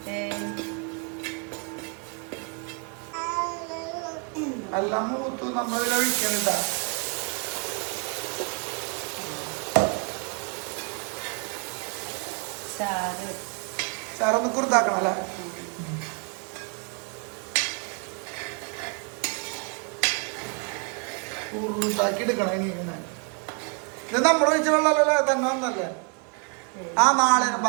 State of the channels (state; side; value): quieter; left; 35.6 dB